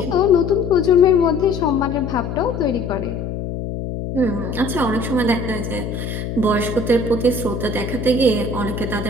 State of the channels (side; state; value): left; noise; hum, 5 dB below the sound